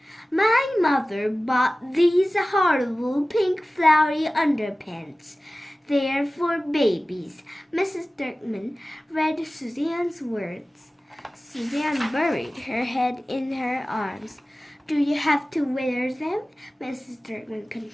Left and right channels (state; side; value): normal; both; correlation 0.96